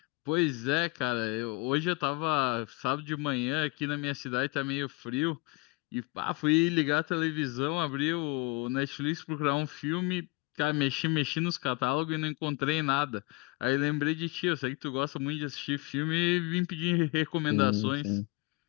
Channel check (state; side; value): quieter; right; 26.7 dB